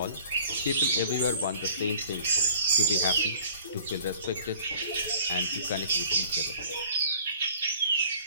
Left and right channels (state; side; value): inverted; both; correlation -0.48